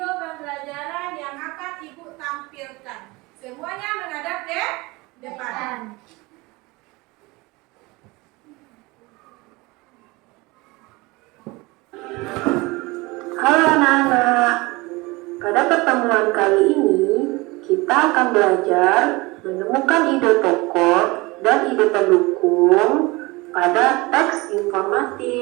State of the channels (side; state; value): left; quieter; 23.4 dB